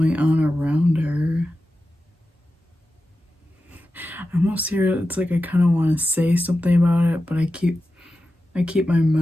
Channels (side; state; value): both; normal; correlation 0.92